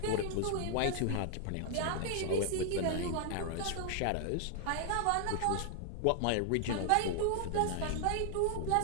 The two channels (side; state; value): both; different; correlation 0.00